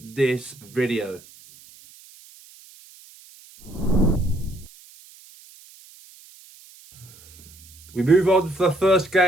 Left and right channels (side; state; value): right; noise; hiss, 23 dB below the sound